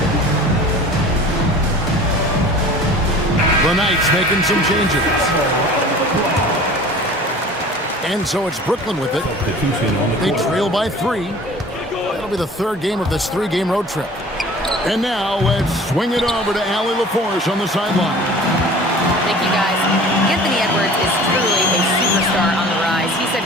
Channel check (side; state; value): both; normal; correlation 0.43